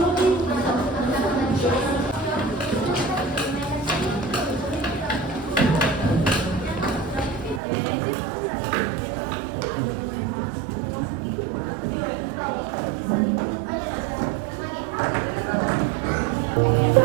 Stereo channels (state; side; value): drops out; left; at 7.6 s